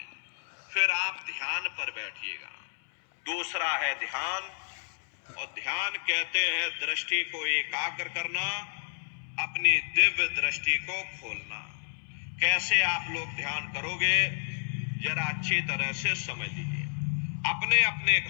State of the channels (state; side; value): silent; right; 57 dB below the other